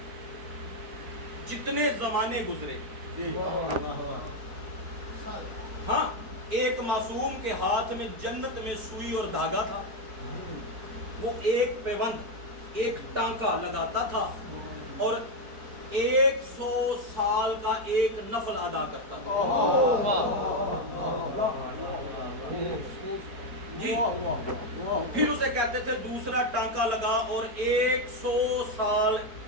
جتنے زمانے گزرے، ہاں ایک معصوم کے ہاتھ میں جنت میں سوئی اور دھاگا تھا، وہ ایک پیوند ایک ٹانکا لگاتا تھا اور 100 سال کا ایک نفل ادا کرتا تھا. جی پھر اسے کہتے تھے دوسرا ٹانکا لگا اور 100 سال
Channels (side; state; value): left; late; 4.4 ms